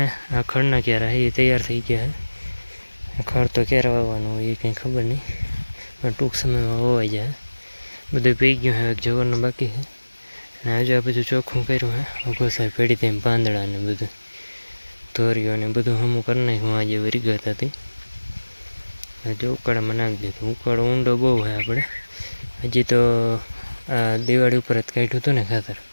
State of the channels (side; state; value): both; inverted; correlation -1.00